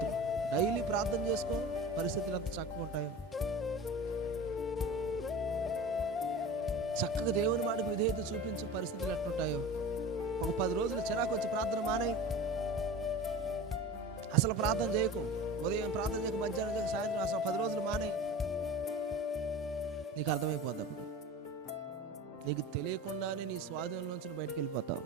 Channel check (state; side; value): normal; both; correlation 0.35